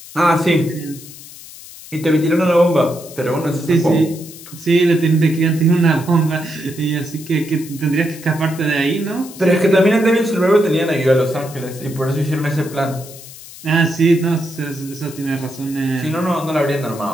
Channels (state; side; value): noise; left; hiss, 17 dB below the sound